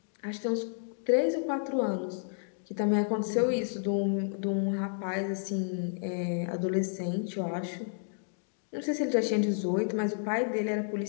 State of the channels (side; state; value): right; silent; digital silence